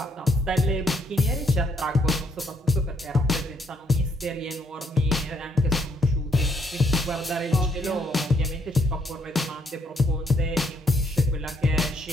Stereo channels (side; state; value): both; normal; correlation 0.71